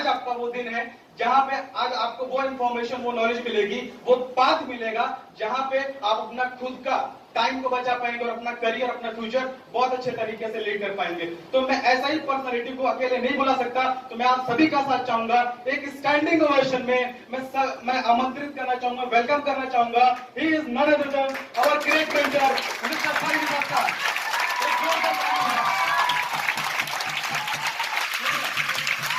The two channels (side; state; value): both; identical; correlation 1.00